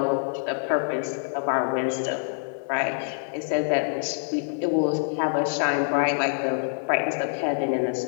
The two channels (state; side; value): silent; right; digital silence